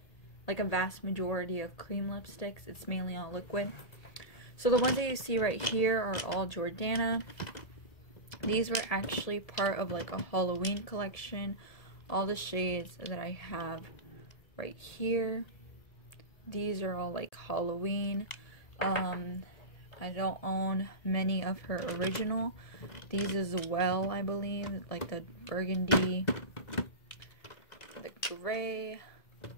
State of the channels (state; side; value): late; right; 1.7 ms